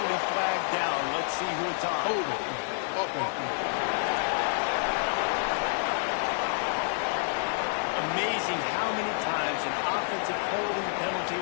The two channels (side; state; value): right; silent; digital silence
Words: flag down. Let's see who it's on. Amazing how many times an offensive holding penalty